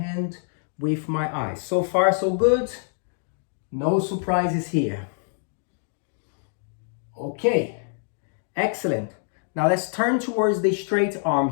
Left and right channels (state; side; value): silent; right; digital silence